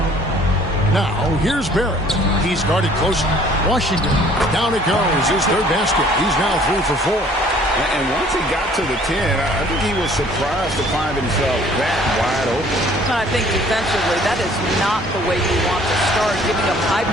Now, here's Barrett. He's guarded closely. Washington. Down it goes. His third basket. He's now 3 for 4. And once he got to the 10, I think he was surprised to find himself that wide open. I think defensively, that is not the way you want to start. Giving up high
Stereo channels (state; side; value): normal; both; correlation 0.56